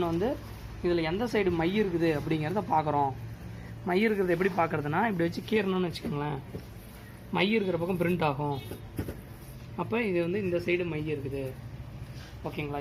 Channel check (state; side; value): identical; both; correlation 1.00